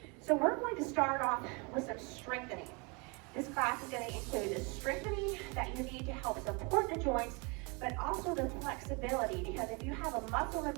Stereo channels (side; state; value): left; quieter; 30.3 dB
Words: So we're going to start off with some strengthening. This class is going to include the strengthening that you need to help support the joints, but also the flexibility, because if you have a muscle